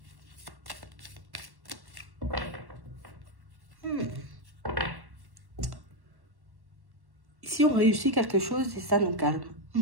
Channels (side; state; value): left; late; 1.1 ms